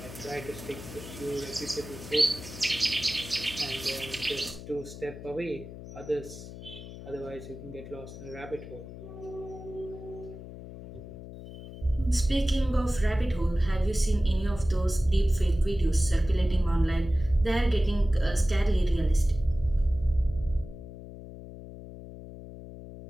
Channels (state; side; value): noise; left; hum, 13 dB below the sound